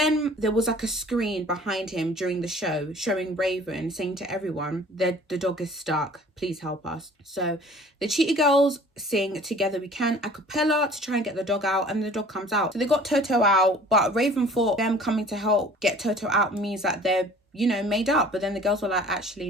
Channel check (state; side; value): normal; both; correlation 0.49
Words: there was like a screen behind him during the show showing Raven saying to everyone that the dog is stuck. Please help us. So the Cheetah Girls sing Together We Can a cappella to try and get the dog out and the dog comes out. So they got Toto out, but Raven thought them coming to help get Toto out means that they're, you know, made up. But then the girls were like, actually,